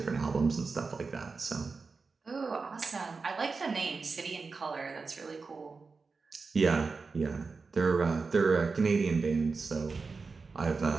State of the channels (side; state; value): left; quieter; 4.5 dB